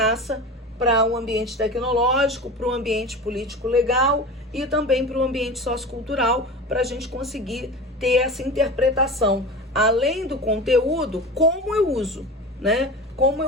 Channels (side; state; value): both; normal; correlation 0.30